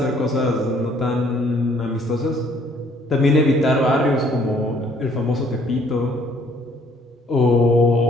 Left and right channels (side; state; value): both; normal; correlation 0.62